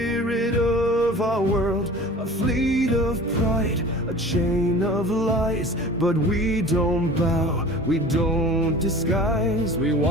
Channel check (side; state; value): both; normal; correlation 0.41